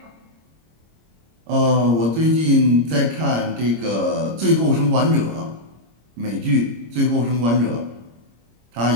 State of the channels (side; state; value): left; late; 26 ms